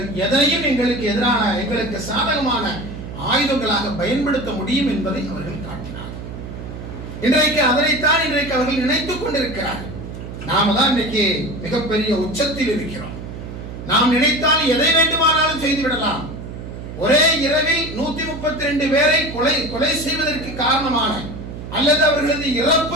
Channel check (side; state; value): right; noise; hum, 10 dB below the sound